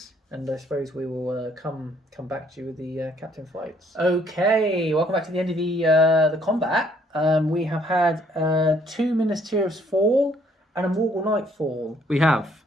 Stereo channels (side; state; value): both; normal; correlation 0.65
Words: And I suppose we will come back to you with the captain fights. Okay, welcome back to the end of the combat. We have had 2 Ministerials fall and a Morgul Knight fall. We have.